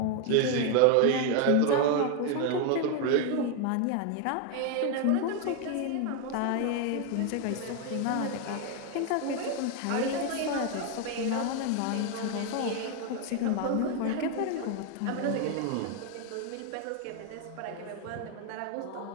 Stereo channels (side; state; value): both; different; correlation 0.01